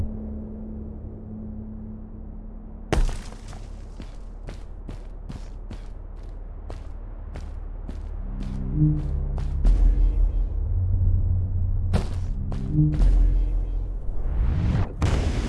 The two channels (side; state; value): both; identical; correlation 1.00